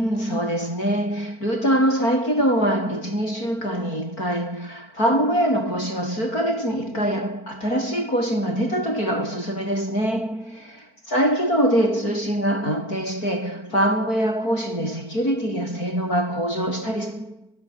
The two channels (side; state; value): right; late; 4.5 ms